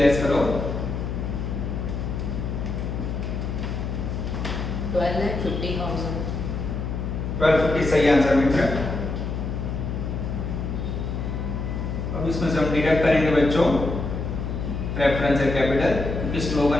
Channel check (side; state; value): left; noise; hum, 3 dB below the sound